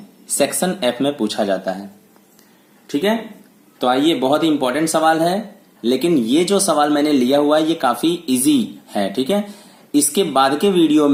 सेक्शन F में पूछा जाता है। ठीक है, तो आइए, बहुत ही इंपॉर्टेंट सवाल है, लेकिन ये जो सवाल मैंने लिया हुआ है ये काफी इजी है। ठीक है, इसके बाद के वीडियो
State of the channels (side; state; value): both; identical; correlation 1.00